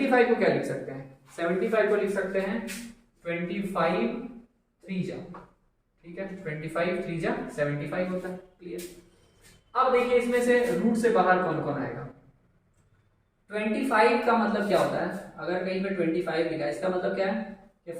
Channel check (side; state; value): both; identical; correlation 1.00